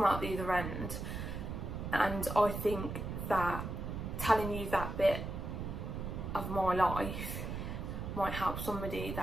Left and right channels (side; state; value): right; noise; rumble, 5 dB below the sound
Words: out the other end, and I think that telling you that bit of my life might help somebody